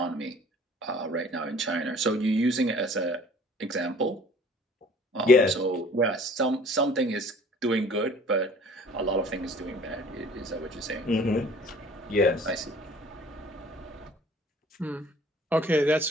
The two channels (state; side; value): normal; both; correlation 0.51